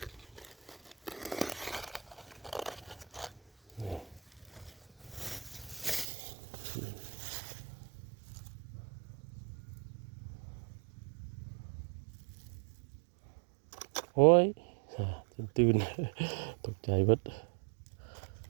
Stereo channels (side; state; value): left; drops out; at 6.1 s